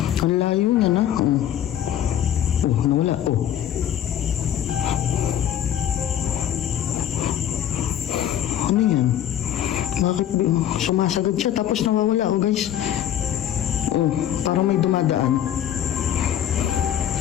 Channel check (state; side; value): quieter; right; 10.5 dB